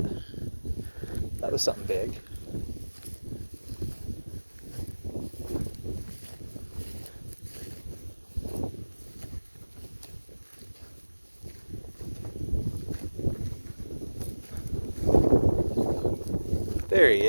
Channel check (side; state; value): both; inverted; correlation -1.00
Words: That was something big. There he